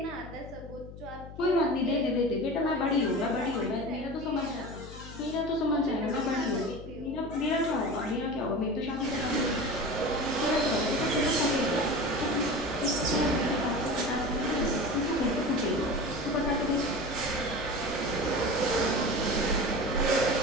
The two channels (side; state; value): left; noise; hum, 14 dB below the sound